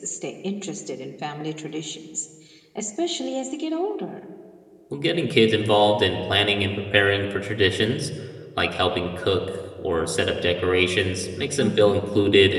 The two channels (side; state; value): both; identical; correlation 1.00